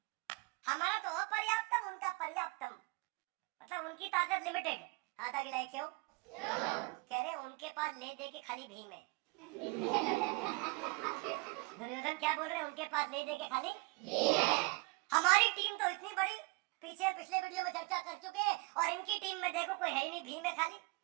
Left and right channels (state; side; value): quieter; left; 26.6 dB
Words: हमारा तो अपर्याप्तम, उनका पर्याप्तम, मतलब उनकी ताकत लिमिटेड। हाथ आगे लाए क्यों? कह रहे उनके पास ले दे के खाली भीम है। दुर्योधन क्या बोल रहे हैं? उनके पास ले दे के खाली हमारी टीम तो इतनी बड़ी, पीछे पिछले वीडियो में चर्चा कर चुके हैं, और इनकी टीम में देखो कोई है ही नहीं, भीम है खाली।